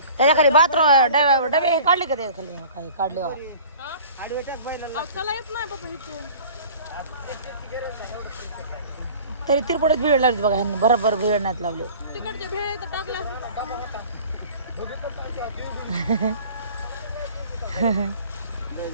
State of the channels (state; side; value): inverted; both; correlation -0.45